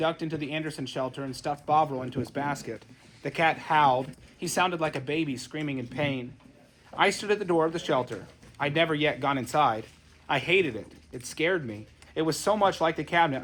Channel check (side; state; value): both; identical; correlation 1.00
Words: into the Anderson shelter and stuffed Bovril into his basket. The cat howled. He sounded like a baby screaming in pain. I stood at the door of the shelter. I'd never yet gone inside. I hated it. It scared me. It was so much like the cabinet